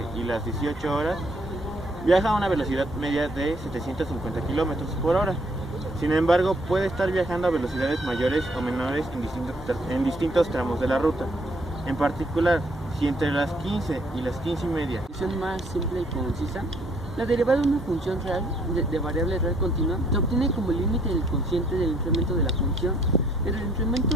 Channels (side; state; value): both; normal; correlation 0.66